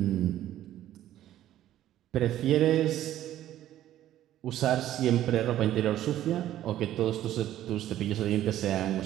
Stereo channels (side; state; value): left; quieter; 12.8 dB